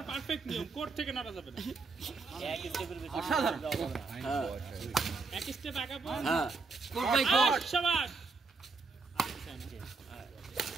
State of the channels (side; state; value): left; quieter; 4.3 dB